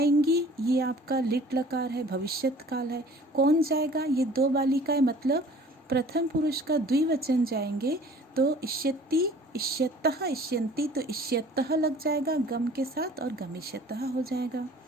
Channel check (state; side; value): normal; both; correlation 0.49